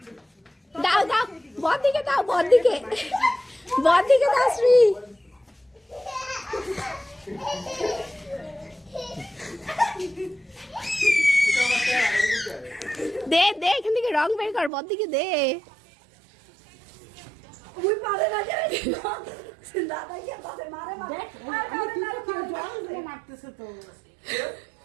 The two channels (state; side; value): drops out; left; at 14.7 s